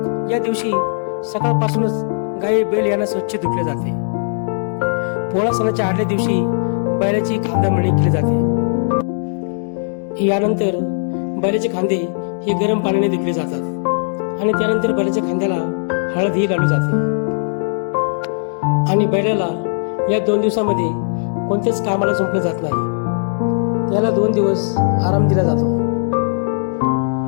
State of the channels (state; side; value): silent; right; 67 dB below the other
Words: या दिवशी सकाळपासूनच गाई बैल यांना स्वच्छ धुतले जाते. पोळा सणाच्या आदल्या दिवशी बैलाची खांदा मळणी केली जाते. यानंतर बैलाचे खांदे हे गरम पाण्याने धुतले जातात आणि त्यानंतर बैलाच्या खांद्याला हळदही लावली जाते आणि बैलाला या 2 दिवसामध्ये कोणत्याच कामाला झोपलं जात नाही. त्याला 2 दिवस आराम दिला जातो